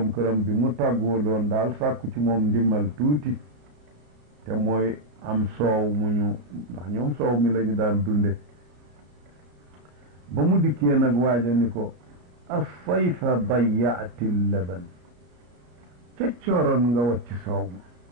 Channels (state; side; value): late; left; 33 ms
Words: këram bi mu tàggoo loon daal sàkku ci moom ndimmal tuuti te mooy am soow mu ñu ndax ñoom soow mi lañu daan dunde ba mu dikkee nag waaja ni ko asayfa dayaati laban ca cooroon nga wacc soow